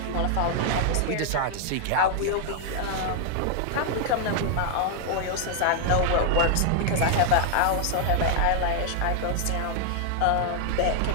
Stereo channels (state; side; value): different; both; correlation 0.00